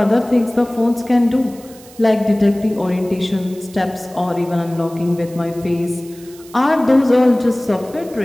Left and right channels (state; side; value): noise; right; hiss, 22 dB below the sound